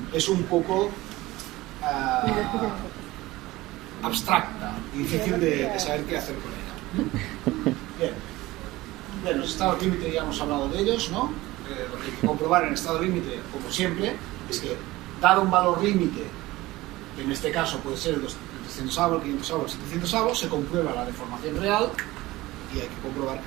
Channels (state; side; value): quieter; left; 18.7 dB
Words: es un poco abstracta y difícil de saber qué hacer con ella. Bien, los estados límite ya hemos hablado de ellos, ¿no? Lo que hay que comprobar en estado límite, como siempre, es que dado un valor límite, que en este caso puede ser el 300avos, el 500avos, el 700avos, se comprueba la deformación real y hay que comprobar